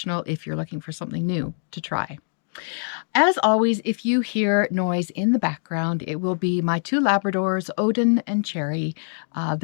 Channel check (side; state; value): right; silent; digital silence